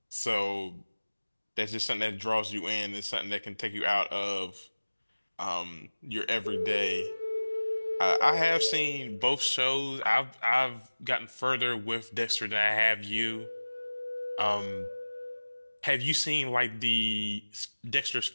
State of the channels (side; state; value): both; inverted; correlation -1.00